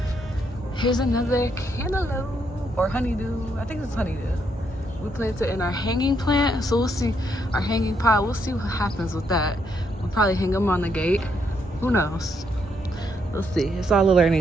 Here's another cantaloupe or honeydew. I think it's honeydew. We planted in our hanging plant, so we'll see. Our hanging pot, we'll see what happens with that. We'll probably hang them on the gate. Who knows? We'll see. It's all a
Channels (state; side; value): normal; both; correlation 0.75